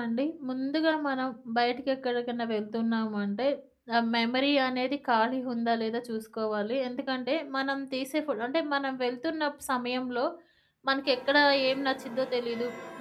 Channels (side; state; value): both; identical; correlation 1.00